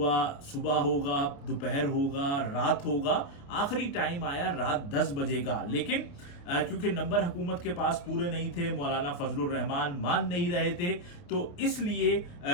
सुबह होगा, दोपहर होगा, रात होगा, आखिरी टाइम आया रात 10 बजे का। लेकिन क्योंकि नंबर हुकूमत के पास पूरे नहीं थे, मौलाना फजलुर रहमान मान नहीं रहे थे, तो इसलिए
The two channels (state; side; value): late; right; 29 ms